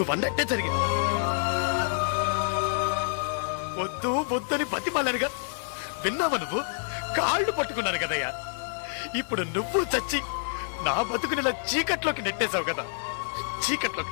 అన్నట్టే జరిగింది వద్దు వద్దని బతిమాలనుగా విన్నావా నువ్వు కాళ్ళు పట్టుకున్నాను కదయ్యా ఇప్పుడు నువ్వు చచ్చి నా బతుకునిలా చీకట్లోకి నెట్టేశావు కదా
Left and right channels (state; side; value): silent; right; digital silence